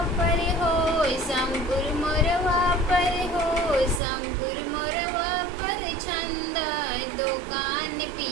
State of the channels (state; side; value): drops out; left; at 4.0 s